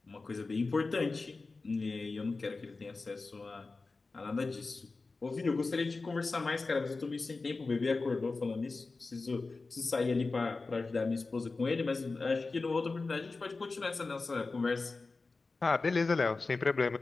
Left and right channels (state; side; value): quieter; right; 3.8 dB